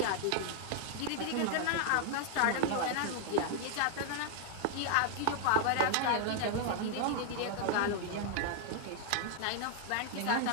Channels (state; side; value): different; both; correlation 0.00